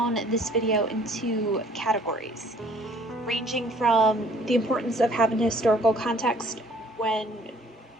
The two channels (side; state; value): both; normal; correlation 0.57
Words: this video into categories, ranging from the importance of having historical context when